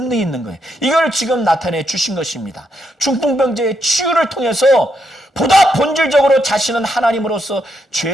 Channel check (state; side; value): normal; both; correlation 0.79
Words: 있는 거예요. 이걸 지금 나타내 주신 것입니다. 중풍병자의 치유를 통해서 보다 본질적으로 자신은 하나님으로서